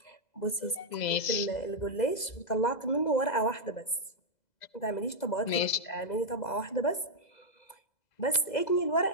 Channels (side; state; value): right; late; 2.0 ms